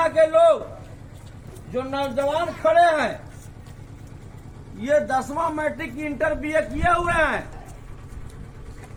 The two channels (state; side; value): identical; both; correlation 1.00